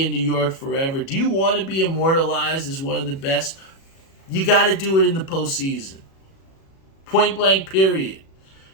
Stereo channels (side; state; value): right; late; 37 ms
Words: in New York forever? Do you want to be immortalized as one of the best? You got to do it in the postseason. Point blank, period.